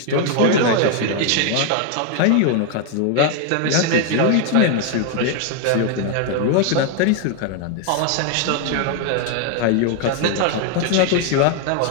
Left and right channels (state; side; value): different; both; correlation 0.01